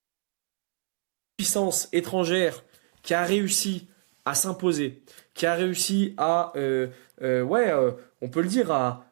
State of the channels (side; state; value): left; silent; 60 dB below the other